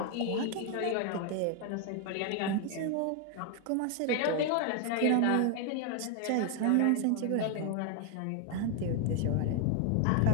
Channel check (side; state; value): both; different; correlation 0.00